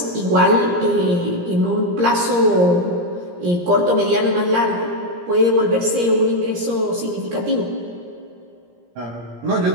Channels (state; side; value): late; left; 17 ms